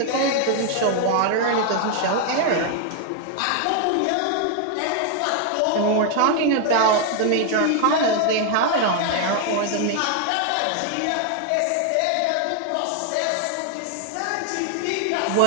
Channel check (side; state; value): both; different; correlation 0.00